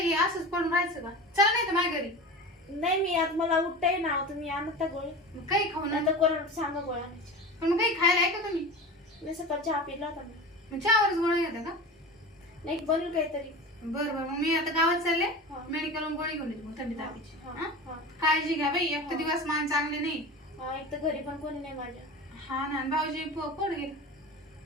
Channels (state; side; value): normal; both; correlation 0.31